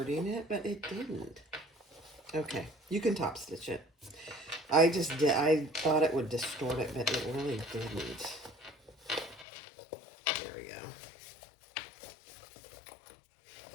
it, but it didn't. Okay, you can top stitch it. I thought it would distort it, but it really didn't. There we go.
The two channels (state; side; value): drops out; right; at 9.5 s